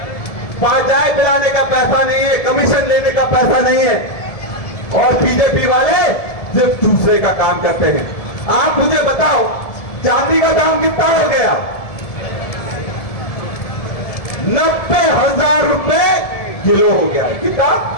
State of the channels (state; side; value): late; right; 1.7 ms